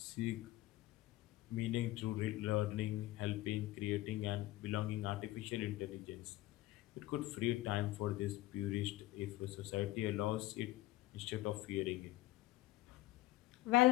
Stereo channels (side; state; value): right; quieter; 17.2 dB